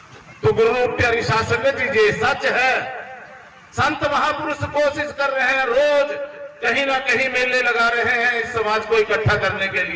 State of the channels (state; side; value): identical; both; correlation 1.00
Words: तो गुरु प्यारी साध संगत जी ये सच है। संत महापुरुष कोशिश कर रहे हैं, रोज कहीं ना कहीं मेले लगा रहे हैं इस समाज को इकट्ठा करने के